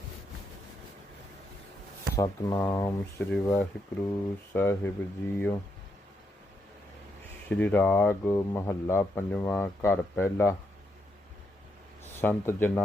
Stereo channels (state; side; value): normal; both; correlation 0.79